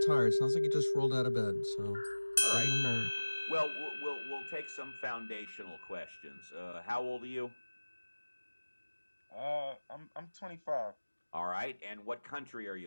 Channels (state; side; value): inverted; both; correlation -1.00